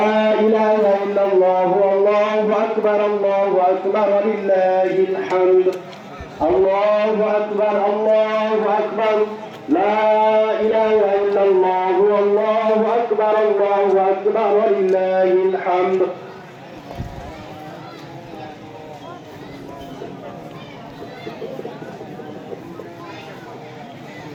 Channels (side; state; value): both; identical; correlation 1.00